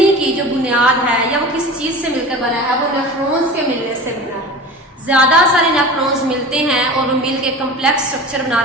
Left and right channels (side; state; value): both; normal; correlation 0.35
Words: की जो बुनियाद है या वो किस चीज से मिलकर बना है, वो नेफ्रॉन्स के मिलने से बना है। ज्यादा सारे नेफ्रॉन्स मिलते हैं और वो मिल के कम्प्लेक्स स्ट्रक्चर बना